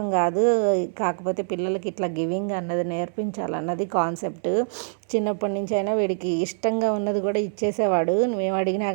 కాదు, కాకపోతే పిల్లలకి ఇట్లా గివింగ్ అన్నది నేర్పించాలన్నది కాన్సెప్ట్. చిన్నప్పటి నుంచి అయినా వీడికి ఇష్టంగా ఉన్నది కూడా ఇచ్చేసేవాడు. మేము అడిగినా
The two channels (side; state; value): left; silent; 62 dB below the other